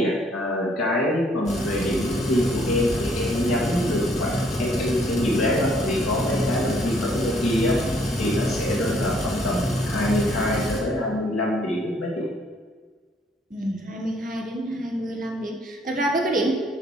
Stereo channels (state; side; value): normal; both; correlation 0.65